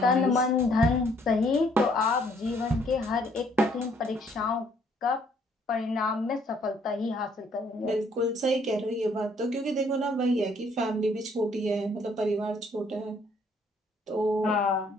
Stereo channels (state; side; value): normal; both; correlation 0.65